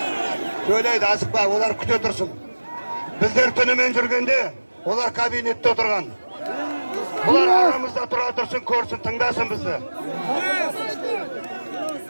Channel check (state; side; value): inverted; both; correlation -1.00